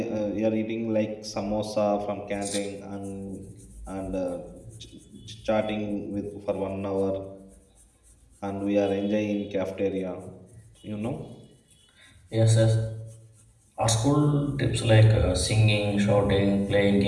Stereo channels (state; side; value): identical; both; correlation 1.00